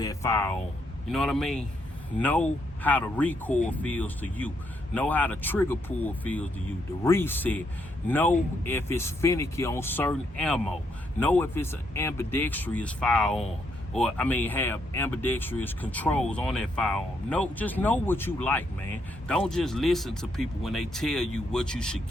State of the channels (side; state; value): both; normal; correlation 0.76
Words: firearm? You know what I mean? Know how the recoil feels to you. Know how the trigger pull feels to you. The reset. Know if it's finicky on certain ammo. Know if it's an ambidextrous firearm. Or, have ambidextrous controls on that firearm. Just know what you like, man. Don't just listen to people when they tell you what you should